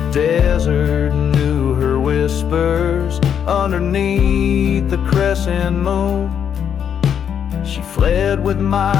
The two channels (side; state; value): right; quieter; 8.3 dB